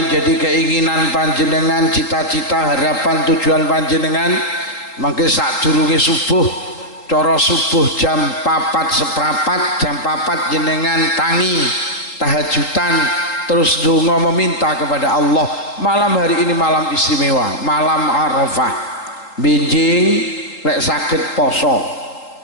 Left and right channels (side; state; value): right; late; 3.9 ms